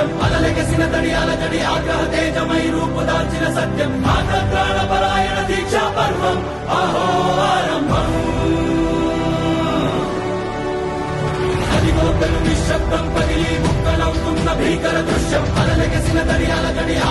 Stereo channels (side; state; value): both; identical; correlation 1.00